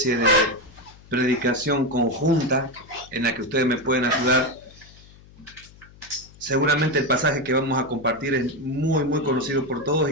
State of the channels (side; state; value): left; noise; hum, 23 dB below the sound